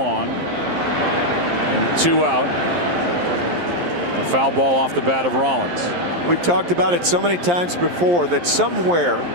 and 2 out. A foul ball off the bat of Rollins. We've talked about it so many times before that somewhere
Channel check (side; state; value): left; late; 11 ms